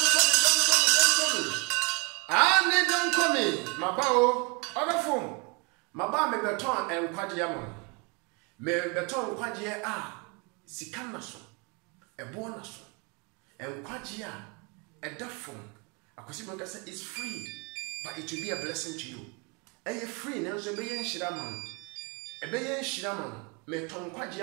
ani don komi mabao odafo maba me beton enkwagye ama me beton kwagye a sika na so ebo na so enkwagye a edafo akosi bonka say it's free but it will be a blessing to you eye free na so be yen hira man ebe yen hira man me ton kwagye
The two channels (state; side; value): quieter; left; 32.0 dB